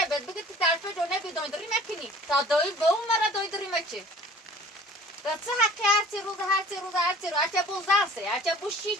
بد بگه تو طرف دونه بیدویداری مکنی تا دوی به اون مرا دویداری مکه و چه حقی هرچی روز هرچی بو زنسه هرچی بو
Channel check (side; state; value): both; normal; correlation 0.49